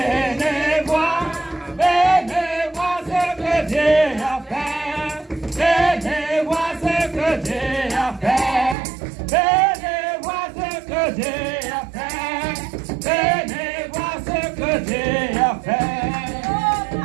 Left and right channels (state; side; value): drops out; left; at 8.8 s